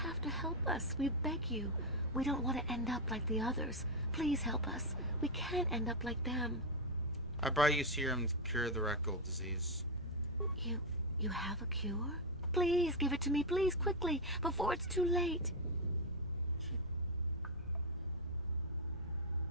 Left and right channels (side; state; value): both; normal; correlation 0.02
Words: to help us. We beg you. We don't want to end up like the others. Please help us. We can't end up like them. I brought you serum to cure the rat ghoul disease. You have a cure? Please give it to me, please, quickly, before it's too late.